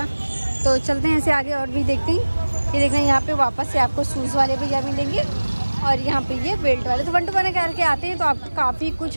तो चलते हैं ऐसे आगे और भी देखते हैं। ये देखना यहाँ पे वापस से आपको शूज़ वाले भैया मिलेंगे। और यहाँ पे ये बेल्ट वाले। तो 1 to 1 करके आते हैं तो आपको काफ़ी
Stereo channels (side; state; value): both; inverted; correlation -1.00